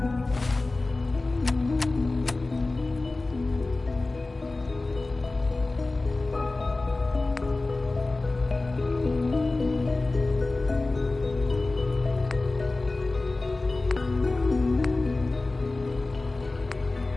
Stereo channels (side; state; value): right; quieter; 3.2 dB